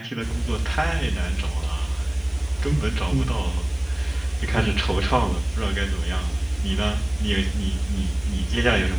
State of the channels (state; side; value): noise; left; hiss, 29 dB below the sound